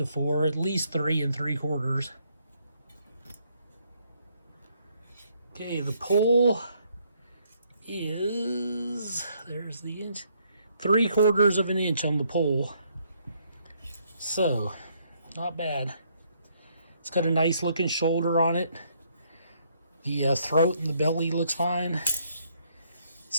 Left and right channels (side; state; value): both; inverted; correlation -0.70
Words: 4, at least 3 3/4. Okay, the pull is, there's the inch, 3/4 of an inch on the pull. So, not bad. It's got a nice looking shoulder on it. The throat and the belly looks fine.